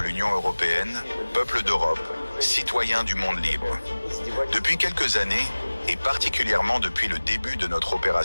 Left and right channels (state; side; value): inverted; both; correlation -1.00